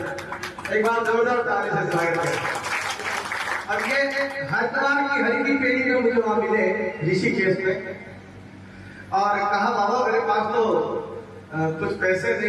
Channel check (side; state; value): both; identical; correlation 1.00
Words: एक बार जोरदार ताली से स्वागत करें। अब ये हरिद्वार की हरि की पेड़ी में मुझे वहां मिले ऋषिकेश में, और कहा बाबा मेरे पास तो कुछ पैसे